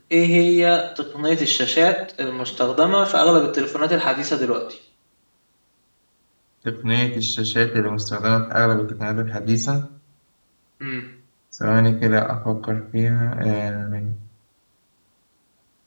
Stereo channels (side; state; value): both; inverted; correlation -1.00